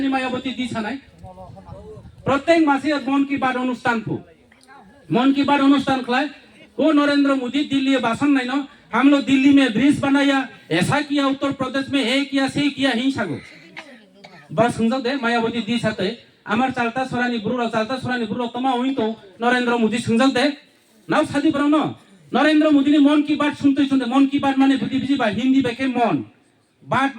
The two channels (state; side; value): identical; both; correlation 1.00